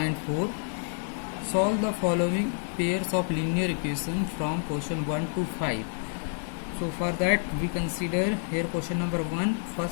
Solve the following pairs of linear equation from question 1 to 5. So for that we consider here question number 1.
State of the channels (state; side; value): silent; right; digital silence